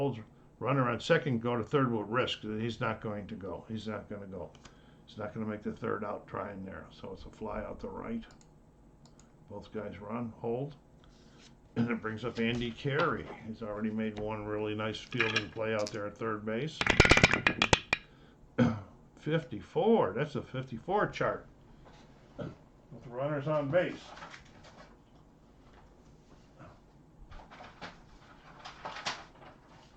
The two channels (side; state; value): both; identical; correlation 1.00